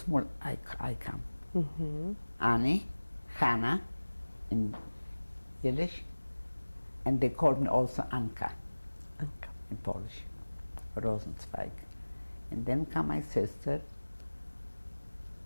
I come. Mm-hmm. Anny, Hannah in Yiddish, and they called me also Anka in Polish, Rosenzweig. And then come my sister,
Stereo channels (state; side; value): inverted; both; correlation -1.00